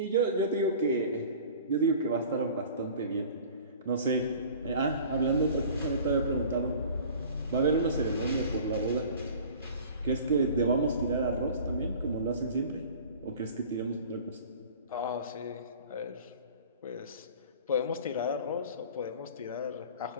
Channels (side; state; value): both; inverted; correlation -0.44